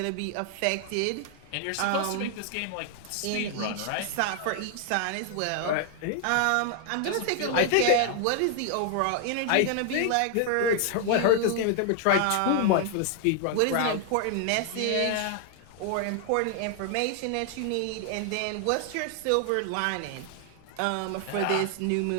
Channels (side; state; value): both; different; correlation 0.00